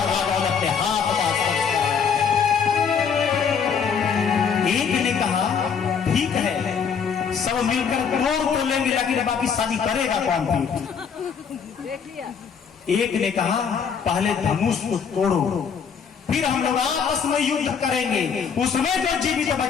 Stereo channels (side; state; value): right; quieter; 6.7 dB